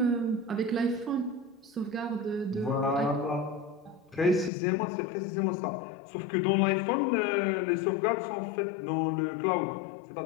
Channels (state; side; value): drops out; right; at 4.5 s